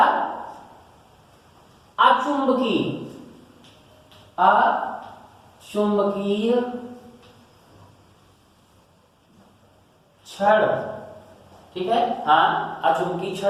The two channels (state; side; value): identical; both; correlation 1.00